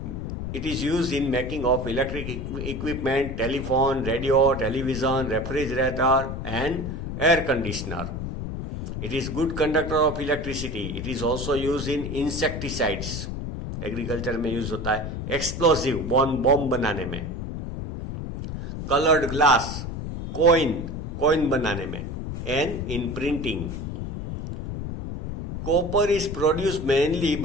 it is used in making of electric equipment, telephone, radio, television, refrigerator and air conditioner. It is good conductor of electricity. It is also used in insecticides. Agriculture में use होता है. Explosive, bomb बनाने में. Coloured glass, coin बनाने में. And in printing. Copper is produced mainly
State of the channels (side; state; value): left; noise; rumble, 6 dB below the sound